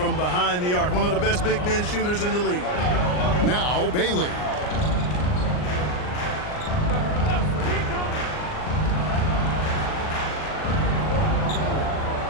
behind the arc. One of the best big men shooters in the league. Now Bailey.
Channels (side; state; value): right; late; 39 ms